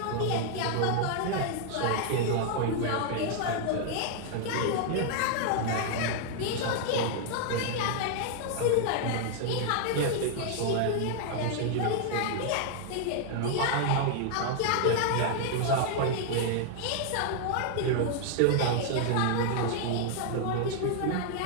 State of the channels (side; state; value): both; different; correlation 0.00